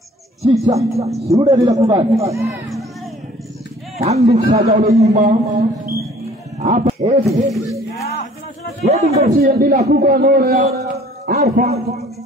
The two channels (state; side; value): normal; both; correlation 0.53